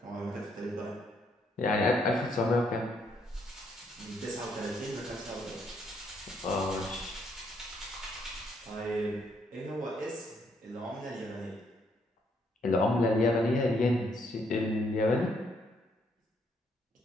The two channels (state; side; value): normal; both; correlation 0.72